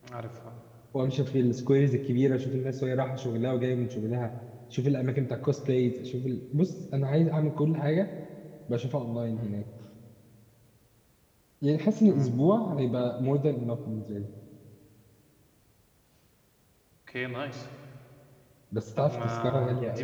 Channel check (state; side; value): identical; both; correlation 1.00